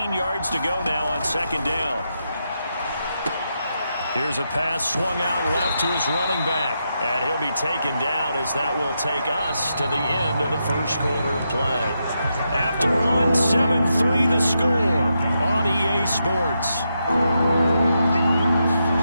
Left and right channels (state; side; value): inverted; both; correlation -0.84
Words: yards to go now on 2nd down. Here's a pass swung out left to his running back. And he'll be taken down as that will take us to the end of the first quarter of play. After one, 7-3 the score on EA Sports.